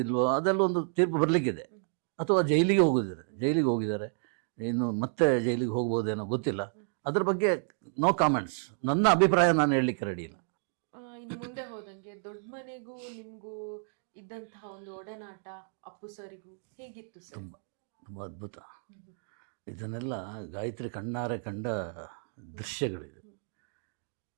ಅದೆಲ್ಲ ಒಂದು ತೀರ್ಪು ಬರಲಿಕ್ಕಿದೆ. ಅಥವಾ ಜೈಲಿಗೆ ಹೋಗಿದ್ದಾರೆ, ಇನ್ನು ಮತ್ತೆ ಜೈಲಿಗೆ ಹೋಗ್ಬೋದೇನೋ ಗೊತ್ತಿಲ್ಲ. ಅದ್ರ ಬಗ್ಗೆ ನೋ ಕಾಮೆಂಟ್ಸ್. ನನ್ನ ಅಭಿಪ್ರಾಯ ನಾನು ಹೇಳಲಿಕ್ಕೆ ರೆಡಿ ಇಲ್ಲ. ಇನ್ನು ಮುಂದೆ ಹೋದಂಗೆ ದೊಡ್ಡ ಮನೆಗೂ ನಿಮಗೂ ಇದ್ದಂತಹ ಒಂದು ಒಡನಾಟ ಅಪ್ಪು ಸರಿಗೂ ಹೇಗಿತ್ತು ಸರ್? ತುಂಬ ಅದ್ಭುತ. ಇದನ್ನೆಲ್ಲ ಗಾಯತ್ರಿ ಕಣ್ಣಾರೆ ಕಂಡ ದೃಶ್ಯಗಳಿದೆ.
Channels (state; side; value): silent; left; 57 dB below the other